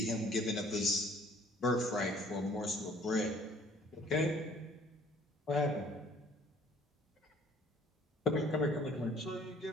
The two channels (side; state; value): both; normal; correlation 0.56